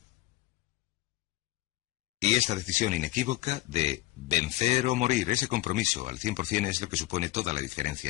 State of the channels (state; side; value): quieter; right; 18.1 dB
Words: Y esta decisión inequívoca de vencer o morir, ese compromiso al 100% es lo que supone toda la diferencia